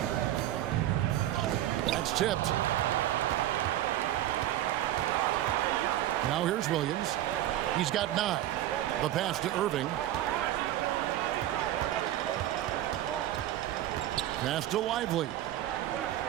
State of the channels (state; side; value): quieter; left; 13.3 dB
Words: That's tipped. Now here's Williams. He's got 9. The pass to Irving. Pass to Lively.